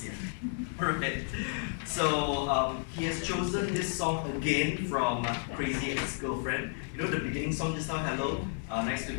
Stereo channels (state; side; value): silent; right; 56 dB below the other